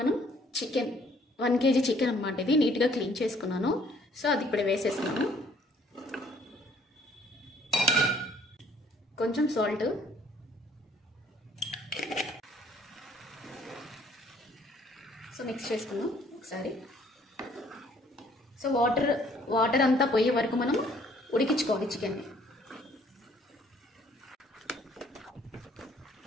చికెన్ 1 kg చికెన్ అన్నమాట. ఇది నీట్గా క్లీన్ చేసుకున్నాను. సో అది ఇప్పుడు వేసేస్తున్నాను. కొంచెం సాల్ట్, సో మిక్స్ చేసుకుందాం ఒకసారి. సో వాటర్ అంతా పోయే వరకు మనం ఉడికించుకోవాలి చికెన్ని.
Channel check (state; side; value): normal; both; correlation 0.60